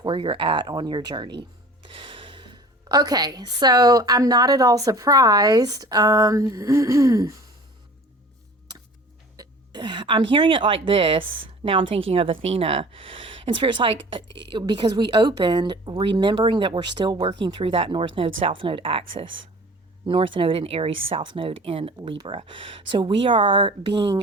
where you're at on your journey. Okay, so I'm not at all surprised. I'm hearing it like this. Now I'm thinking of Athena. And Spirit's like, because we opened remembering that we're still working through that North Node, South Node axis. North Node in Aries, South Node in Libra. So we are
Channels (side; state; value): both; normal; correlation 0.44